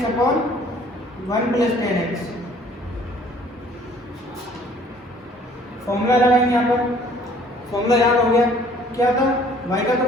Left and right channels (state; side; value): normal; both; correlation 0.56